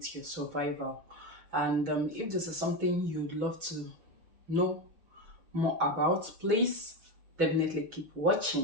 your survival. And if this is something you'd love to know more about, please definitely keep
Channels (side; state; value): left; late; 6.1 ms